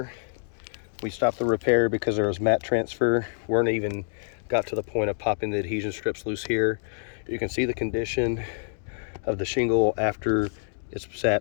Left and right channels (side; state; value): right; silent; digital silence